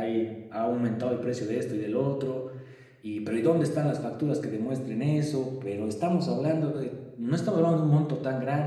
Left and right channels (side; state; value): both; identical; correlation 1.00